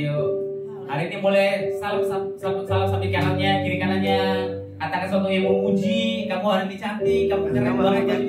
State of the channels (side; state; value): both; identical; correlation 1.00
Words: yuk. Hari ini boleh salam sambil kanannya, kiri kanannya. Katakan sesuatu yang memuji. Kamu hari ini cantik, kamu keren banget